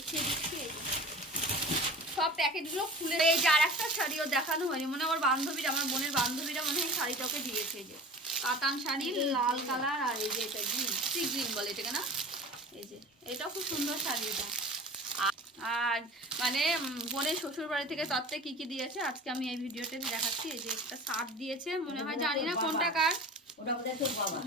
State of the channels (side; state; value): both; normal; correlation 0.38